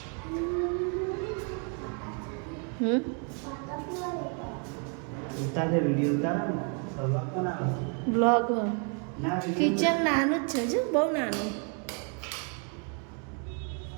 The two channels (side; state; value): left; quieter; 39.5 dB